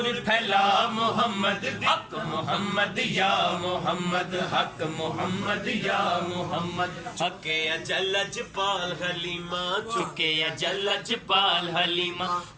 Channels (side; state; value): both; identical; correlation 1.00